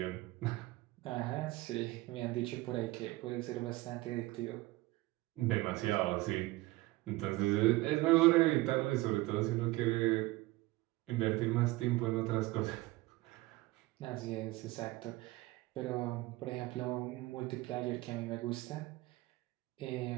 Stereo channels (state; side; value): quieter; left; 19.8 dB